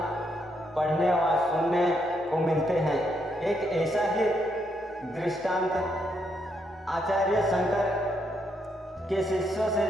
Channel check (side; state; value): both; normal; correlation 0.77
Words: पढ़ने व सुनने को मिलते हैं। एक ऐसा ही दृष्टांत आचार्य शंकर के शिष्यों से